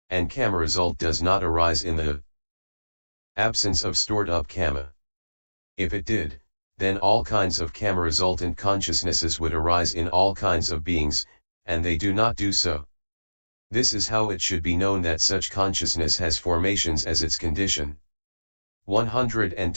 And karma result does not arise in the absence of stored up karma. If it did, then all kinds of karma resultant consciousnesses would arise in all kinds of beings, and they do not do so. This is how it should be known that such consciousness has formations as its condition.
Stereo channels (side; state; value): both; inverted; correlation -1.00